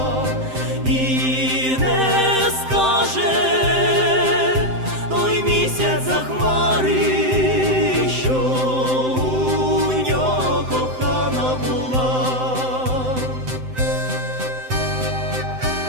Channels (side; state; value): left; late; 7.8 ms